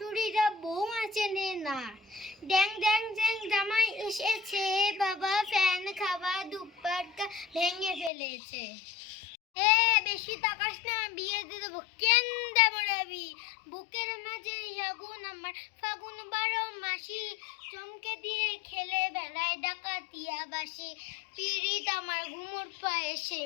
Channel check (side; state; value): right; drops out; at 8.1 s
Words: বৌমা চেনে না। ড্যাং ড্যাং ড্যাং জামাই এসেছে, বাবা ফ্যান খাওয়া দুপাট্টা ভেঙে ফেলেছে। বেশি তাকাস না, বিয়ে দিয়ে দেবো। কেন দেবো রাবি? বুকের মাঝে আগুন আমার, ফাগুন 12 মাসি, চমকে দিয়ে খেলে বেড়ায় ডাকাতিয়া বাসি। পিরিত আমার ঘুমোর পায়ে, সেই